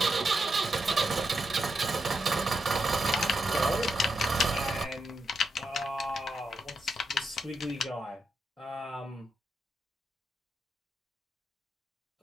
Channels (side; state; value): both; normal; correlation 0.84